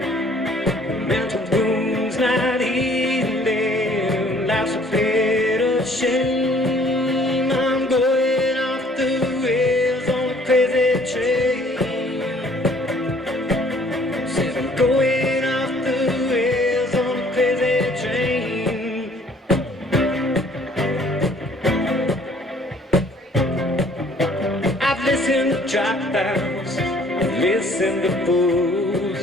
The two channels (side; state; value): both; normal; correlation 0.58